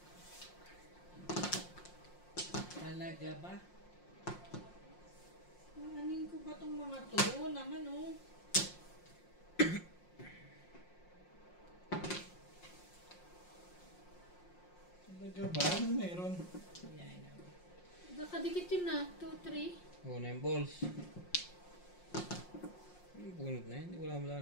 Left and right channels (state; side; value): late; right; 5.6 ms